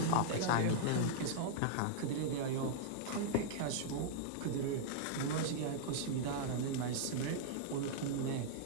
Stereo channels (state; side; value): different; both; correlation -0.01